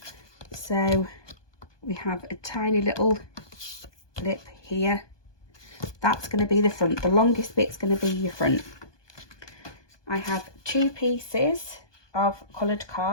so we have a tiny little lip here. That's going to be the front. The longest bit's going to be your front. I have 2 pieces of coloured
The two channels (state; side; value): late; right; 1.2 ms